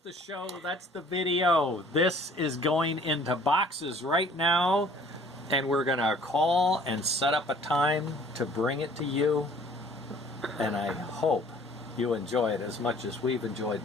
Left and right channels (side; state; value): both; normal; correlation 0.54